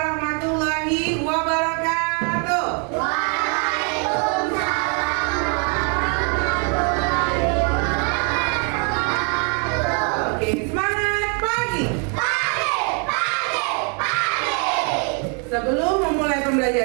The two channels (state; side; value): quieter; left; 38.3 dB